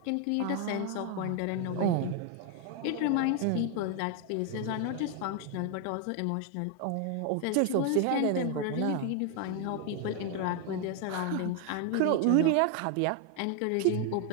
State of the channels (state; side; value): different; both; correlation 0.00